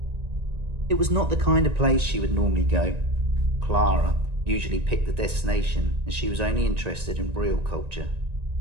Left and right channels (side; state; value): left; late; 1.9 ms